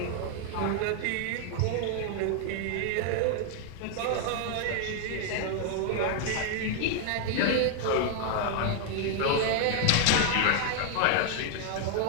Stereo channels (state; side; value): different; both; correlation 0.00